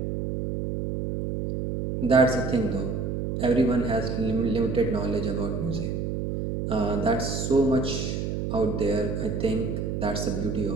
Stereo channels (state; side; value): noise; right; hum, 2 dB below the sound